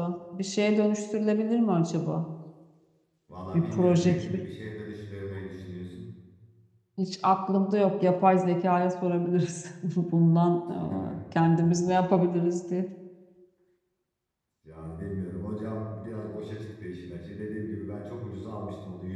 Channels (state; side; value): identical; both; correlation 1.00